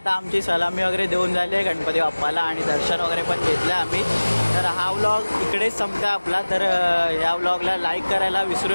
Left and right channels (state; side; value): inverted; both; correlation -1.00